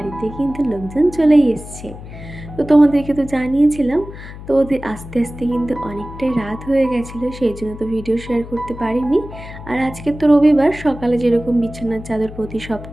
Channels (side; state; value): left; noise; hum, 14 dB below the sound